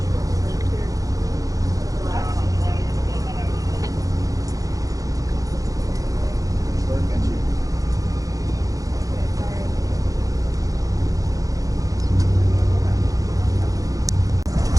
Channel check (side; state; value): left; late; 0.17 ms